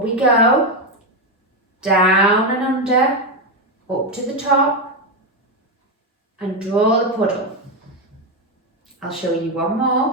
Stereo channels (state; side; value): normal; both; correlation 0.08